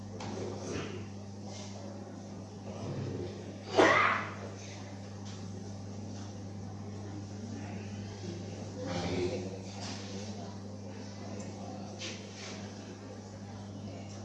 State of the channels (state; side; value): identical; both; correlation 1.00